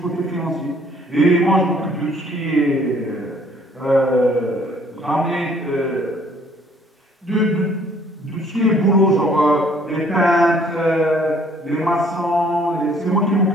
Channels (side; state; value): both; normal; correlation 0.60